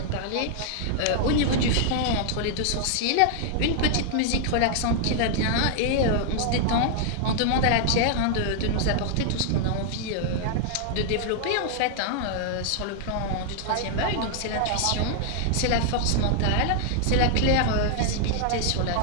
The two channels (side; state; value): both; different; correlation 0.00